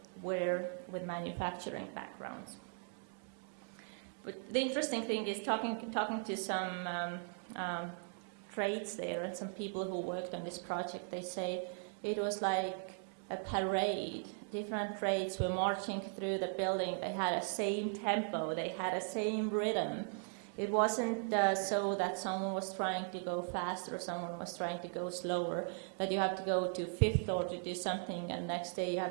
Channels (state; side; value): silent; left; 52 dB below the other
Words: were with manufacturing backgrounds. But the interesting thing is talking to some trades there and some people who worked on this project, they say it was like a parade. Different trades were marching through the building. They had the same tempo. They had the same rhythm. It wasn't so that someone was trying to go faster or someone was trying to go slower, that you have to go to 5th floor to do something and next day you